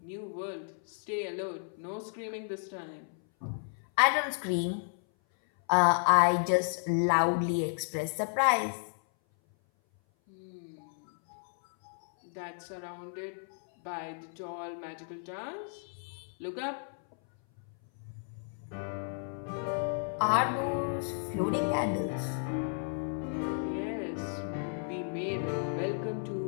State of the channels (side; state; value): right; silent; 56 dB below the other